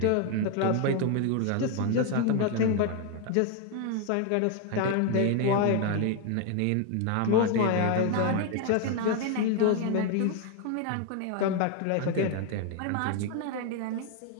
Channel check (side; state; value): both; different; correlation 0.01